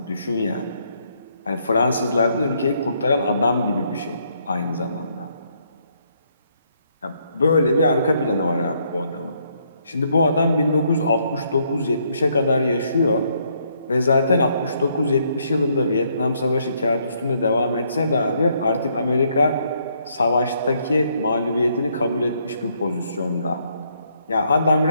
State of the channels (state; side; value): inverted; both; correlation -0.72